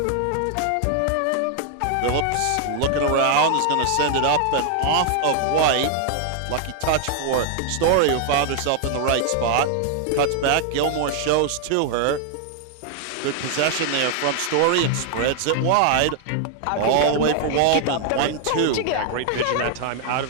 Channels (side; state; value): both; different; correlation 0.00